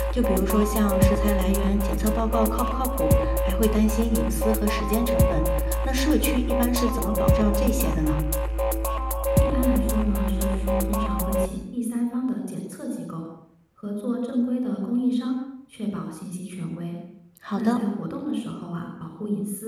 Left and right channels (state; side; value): identical; both; correlation 1.00